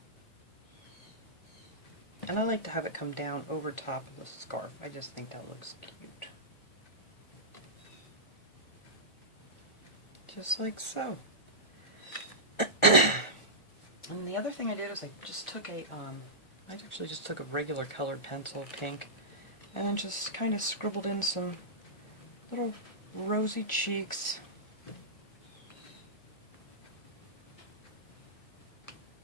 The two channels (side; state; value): right; late; 1.4 ms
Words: and I like to have it come down over top of the scarf. I just think that looks cute. Just like so. And the other thing I did is I just took I actually just took a regular colored pencil, pink, and then just kind of scribbled in some little rosy cheeks.